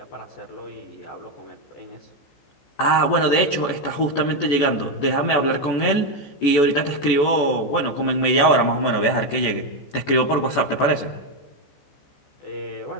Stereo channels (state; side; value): late; right; 14 ms